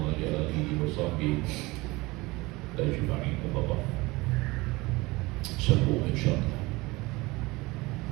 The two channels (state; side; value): quieter; left; 22.3 dB